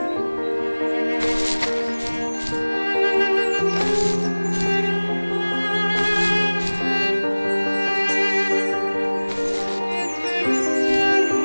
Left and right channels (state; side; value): inverted; both; correlation -1.00